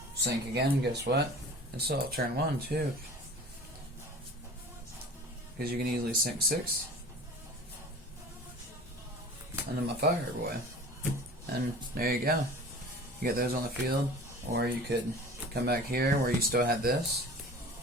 sink again, and guess what? It's all turn 1, too. Because you can easily sink 6. And then my Fire Boy. And there you go. You get those on the field. Or you could come back here where you still had this.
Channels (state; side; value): normal; both; correlation 0.40